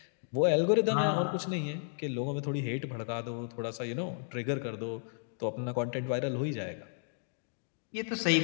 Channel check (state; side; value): silent; right; digital silence